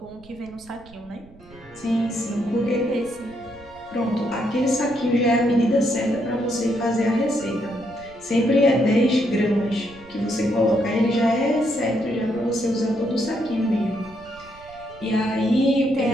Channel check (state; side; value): noise; right; rumble, 23 dB below the sound